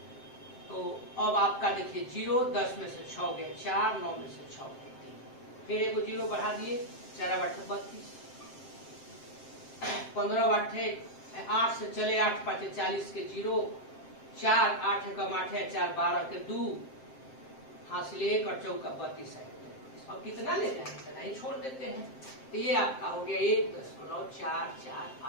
तो अब आपका देखिए 0, 10 में से 6 गया 4, 9 में से 6 गया 3, फिर एक 0 बढ़ा दिए, 4 8 32, 15 8 से चले 8 5 40 के 0, 4 8 कम 8 है 4 12 के 2, हासिल 1 और चौका 32 है। अब कितना ले जाएंगे, इतना ही छोड़ देते हैं। तो ये आपका हो गया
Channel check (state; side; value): late; right; 7.6 ms